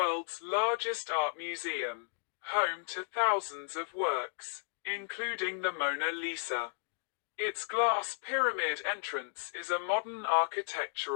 largest art museum, home to thousands of works, including the Mona Lisa. Its glass pyramid entrance is a modern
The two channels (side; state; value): right; silent; digital silence